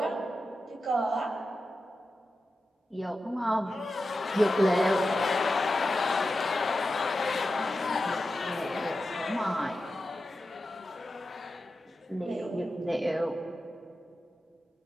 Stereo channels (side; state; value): both; normal; correlation 0.91